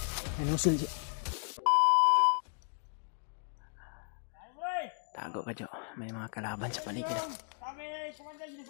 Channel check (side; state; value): right; silent; 55 dB below the other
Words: May nusul siya. Tago ka, Jo. May mga kalaban sa paligid. Kami kumandan dito